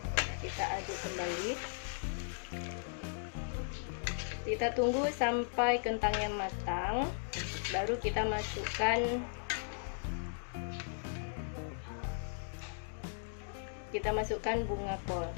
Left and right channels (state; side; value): silent; right; digital silence